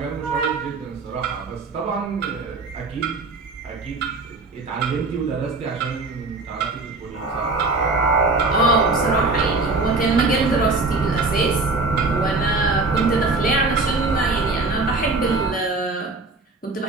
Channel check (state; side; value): quieter; left; 3.6 dB